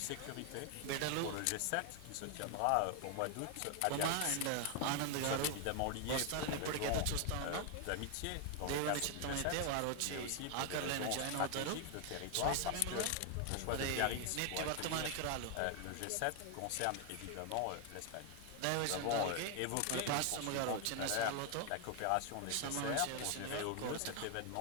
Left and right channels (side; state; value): both; different; correlation 0.00